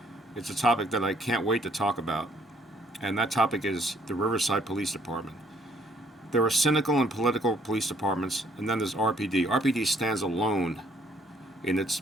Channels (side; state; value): both; normal; correlation 0.65